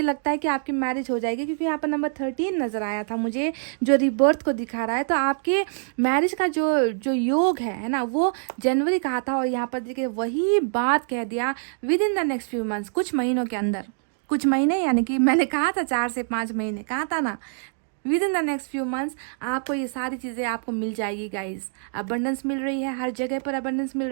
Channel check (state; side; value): silent; left; digital silence